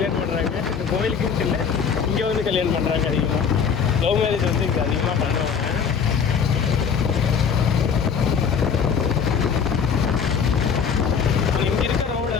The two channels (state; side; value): quieter; right; 6.7 dB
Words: பண்ணுறாங்க. இந்த கோயிலுக்குன்னு இல்லை, இங்கே வந்து கல்யாணம் பண்ணுறாங்க. அதிகமாக லவ் மேரேஜ் வந்து இங்கே அதிகமாக பண்ணுவாங்க.